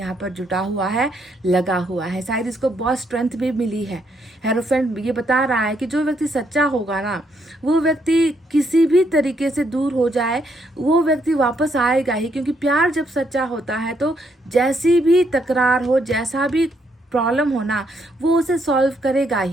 पर जुटा हुआ है, लगा हुआ है। शायद इसको बहुत स्ट्रेंथ भी मिली है। हेरोफेंट ये बता रहा है कि जो व्यक्ति सच्चा होगा ना, वो व्यक्ति किसी भी तरीके से दूर हो जाए, वो व्यक्ति वापस आएगा ही। क्योंकि प्यार जब सच्चा होता है तो जैसी भी तकरार हो, जैसा भी प्रॉब्लम हो ना, वो उसे सॉल्व करेगा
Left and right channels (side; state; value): both; normal; correlation 0.74